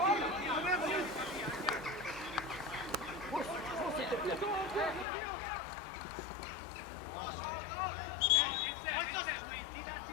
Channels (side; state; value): right; drops out; at 5.1 s